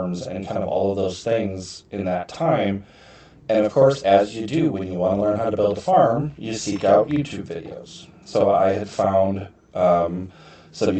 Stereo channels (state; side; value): identical; both; correlation 1.00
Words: and kind of all of those things in that time. And of course, as you do when you want to learn how to build a farm, you seek out YouTube videos. So I had found some